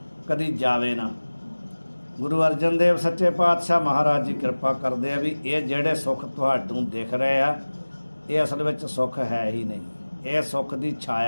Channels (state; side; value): inverted; both; correlation -1.00